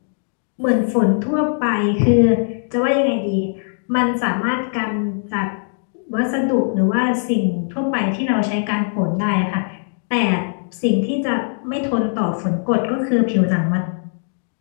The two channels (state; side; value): silent; right; digital silence